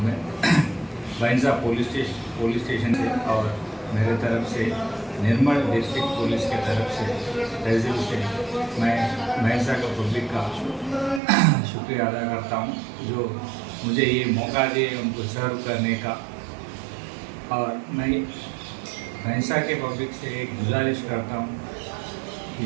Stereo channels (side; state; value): left; drops out; at 11.2 s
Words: मैं भैंसा पुलिस स्टेशन से और मेरे तरफ से निर्मल डिस्ट्रिक्ट पुलिस के तरफ से तहसील से मैं भैंसा का पब्लिक का शुक्रिया अदा करता हूँ जो मुझे ये मौका दिए उनको सर्व करने का। और मैं भैंसा के पब्लिक से एक गुजारिश करता हूँ